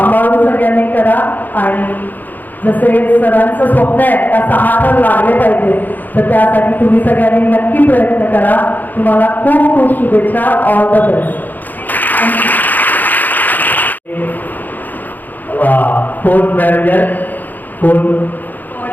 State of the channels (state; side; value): late; right; 0.085 ms